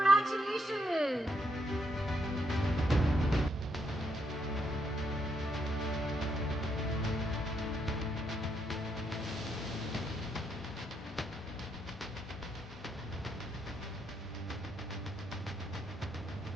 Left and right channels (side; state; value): both; normal; correlation 0.77